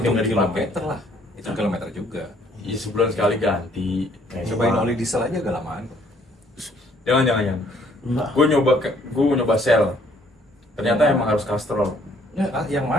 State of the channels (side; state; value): both; normal; correlation 0.63